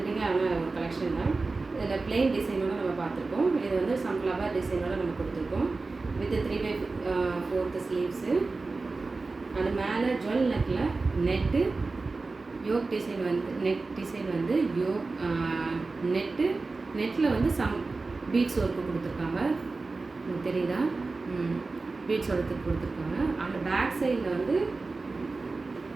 ஒரு கலெக்ஷன் தான். இதில் பிளெயின் டிசைனோட நம்ம பார்த்துருக்கோம். இது வந்து சம் ஃப்ளவர் டிசைனோட நம்ம கொடுத்துருக்கோம். With 3/4 sleeves. அது மேலே ஜுவல் நெக்கில் நெட்டு யோக் டிசைன் வந்து யோக் நெட்டில் வந்து சம் பீட்ஸ் ஒர்க்கு கொடுத்துருக்காங்க. உங்களுக்கு தெரியுதா? பீட்ஸ் ஒர்க்கு கொடுத்துருக்காங்க. அந்த பேக் சைடில் வந்து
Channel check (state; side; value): quieter; left; 3.7 dB